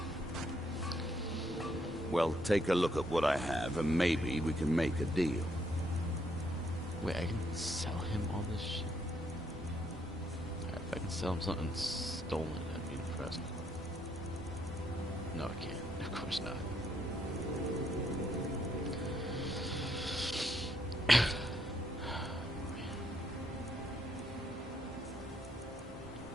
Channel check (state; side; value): normal; both; correlation 0.73